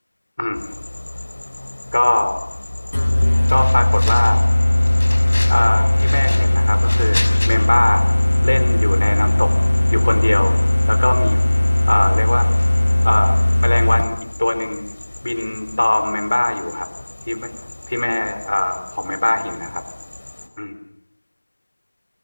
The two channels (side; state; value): both; inverted; correlation -1.00